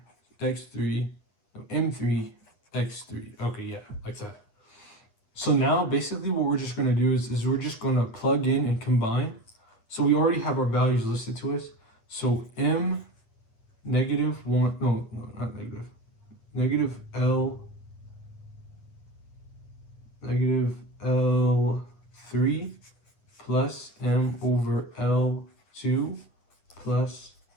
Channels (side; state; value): right; late; 9.0 ms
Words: x3. No, m3, x3. Okay, yeah, like that. So now basically what we're just going to do is we're just going to plug in and combine. So we already have our values listed to us. So m negative 1, no, not negative. Negative L, negative L3 plus m over L2 plus